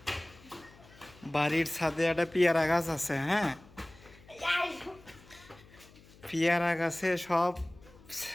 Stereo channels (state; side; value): noise; left; hum, 24 dB below the sound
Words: বাড়ির ছাদে একটা পেয়ারা গাছ আছে, হ্যাঁ, পেয়ারা গাছে সব